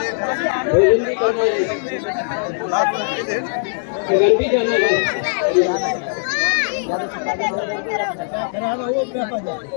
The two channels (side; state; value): right; silent; 66 dB below the other